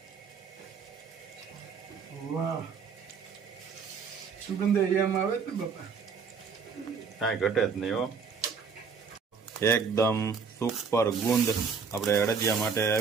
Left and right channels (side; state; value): left; quieter; 5.7 dB